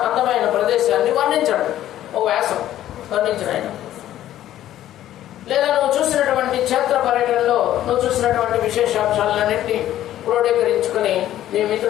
అందమైన ప్రదేశాన్ని వర్ణించండి. ఒక వ్యాసం వర్ణించడం. లేదా నువ్వు చూసినటువంటి క్షేత్ర పర్యటనలో నువ్వు చూసినటువంటి విశేషాంశాలన్నింటినీ క్రోడీకరించుకుని నీ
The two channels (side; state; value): right; quieter; 12.7 dB